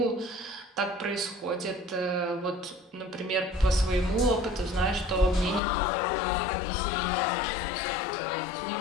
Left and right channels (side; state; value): right; drops out; at 5.6 s